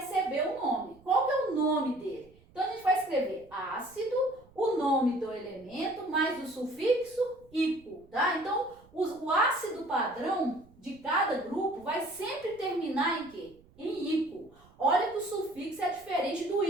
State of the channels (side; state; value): right; noise; rumble, 26 dB below the sound